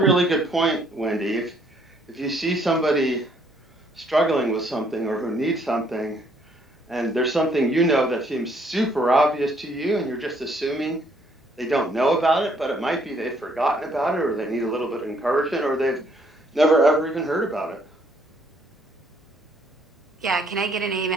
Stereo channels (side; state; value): both; normal; correlation 0.66